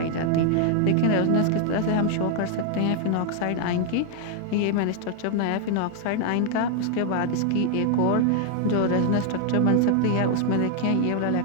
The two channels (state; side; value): different; both; correlation 0.00